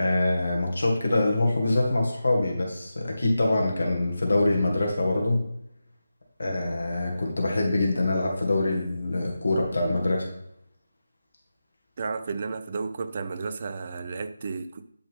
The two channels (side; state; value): both; inverted; correlation -0.91